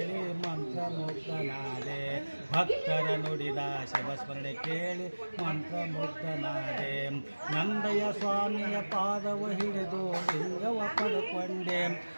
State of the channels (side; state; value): both; inverted; correlation -1.00